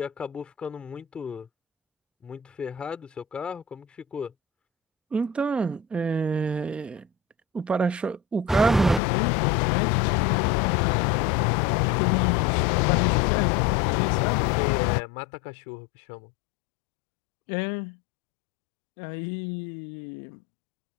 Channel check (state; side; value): drops out; right; at 9.0 s